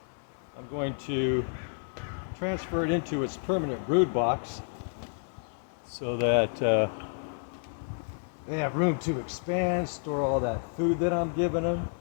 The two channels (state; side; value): silent; right; digital silence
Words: I'm going to transfer it into its permanent brood box so that they have room to expand, store all that food that I'm giving them.